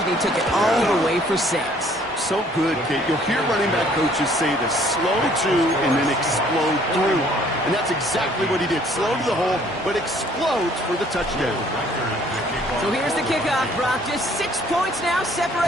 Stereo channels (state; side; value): normal; both; correlation 0.59